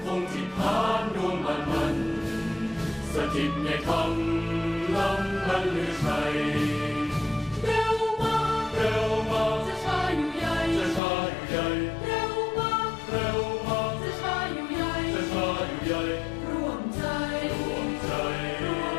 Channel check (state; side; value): drops out; right; at 11.0 s